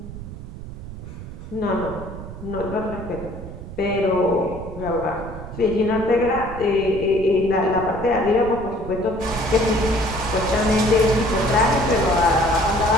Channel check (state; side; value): noise; right; rumble, 11 dB below the sound